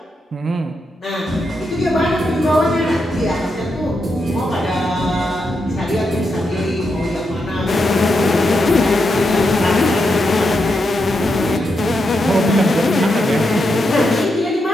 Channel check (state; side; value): normal; both; correlation 0.84